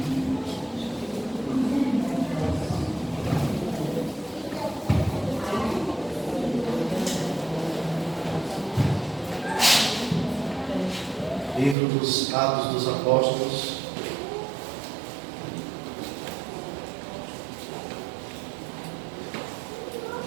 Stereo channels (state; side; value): drops out; left; at 11.8 s